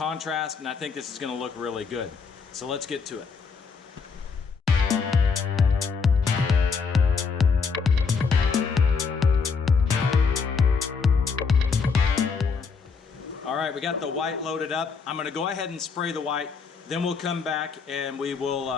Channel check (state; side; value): quieter; right; 5.3 dB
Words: and I think this is going to look really good. So let's get to it. All right, we got the white loaded up. I'm going to go ahead and spray the white, then we'll come back and we